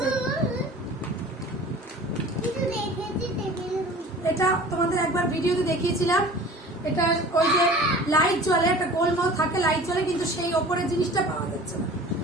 এটা তোমাদের একবার ভিডিওতে দেখিয়েছিলাম। এটা ওই যে লাইট জ্বলে, একটা গোলমাল থাকে, লাইট জ্বলে, কিন্তু সেই ওপরের জিনিসটা পাওয়া যাচ্ছে না।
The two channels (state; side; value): normal; both; correlation 0.43